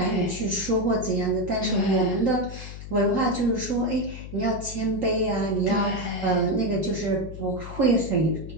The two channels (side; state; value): left; noise; hum, 11 dB below the sound